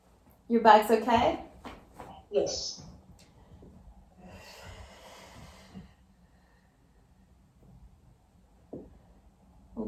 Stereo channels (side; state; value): both; identical; correlation 1.00